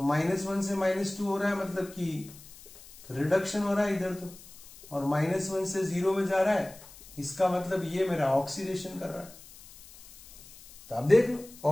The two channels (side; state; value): left; noise; hiss, 20 dB below the sound